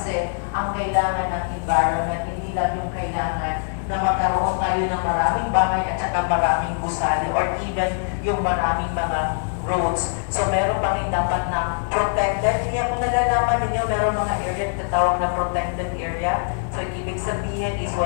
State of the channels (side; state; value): right; silent; digital silence